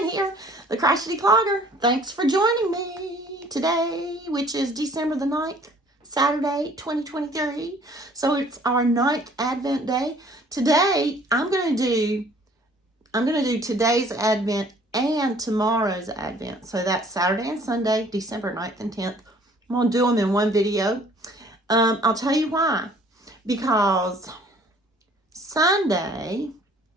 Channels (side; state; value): both; normal; correlation 0.56